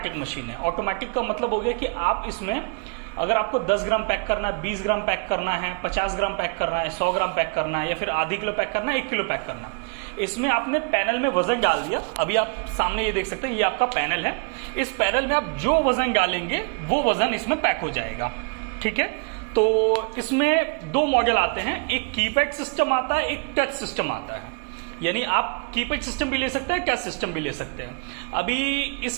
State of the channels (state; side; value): quieter; left; 35.1 dB